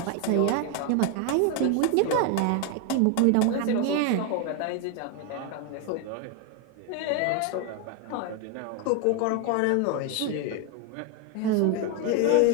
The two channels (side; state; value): both; different; correlation 0.01